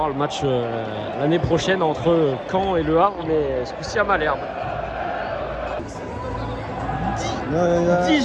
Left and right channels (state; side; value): identical; both; correlation 1.00